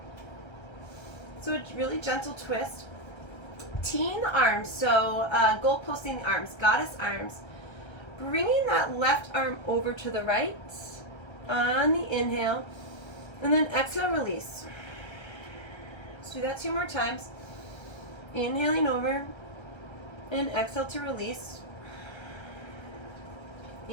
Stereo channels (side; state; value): right; late; 1.3 ms